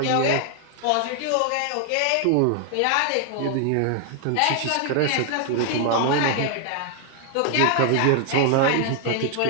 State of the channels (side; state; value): both; different; correlation 0.00